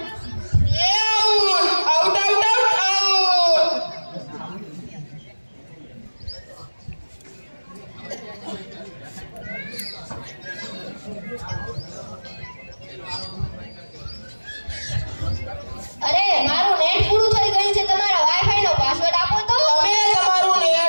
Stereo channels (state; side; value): inverted; both; correlation -1.00